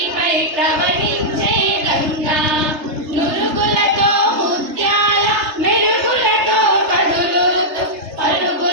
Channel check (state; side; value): late; left; 3.3 ms